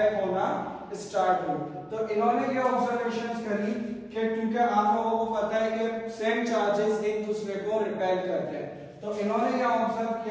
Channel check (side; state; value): both; identical; correlation 1.00